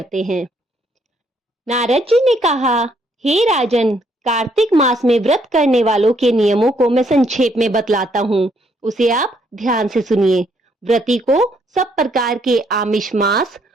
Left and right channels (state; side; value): normal; both; correlation 0.70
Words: हैं। नारद जी ने कहा, हे राजन, कार्तिक मास में व्रत करने वालों के नियमों को मैं संक्षेप में बतलाता हूँ, उसे आप ध्यान से सुनिए। व्रती को सब प्रकार के आमिष मांस,